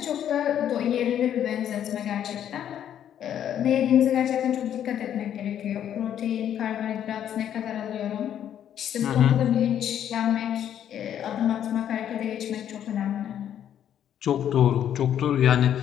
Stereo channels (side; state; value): right; quieter; 10.0 dB